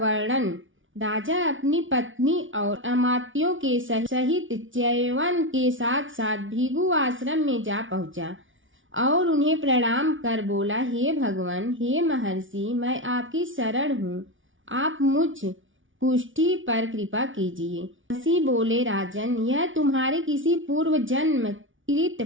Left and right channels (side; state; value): left; late; 0.57 ms